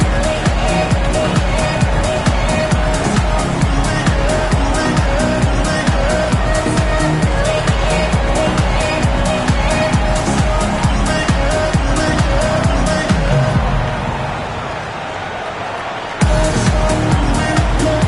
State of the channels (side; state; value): both; identical; correlation 1.00